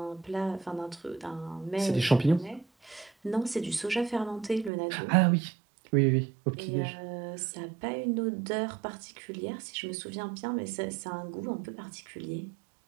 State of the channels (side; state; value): left; drops out; at 4.7 s